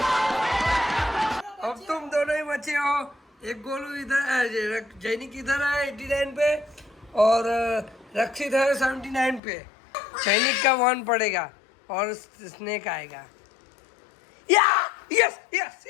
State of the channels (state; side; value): drops out; right; at 9.4 s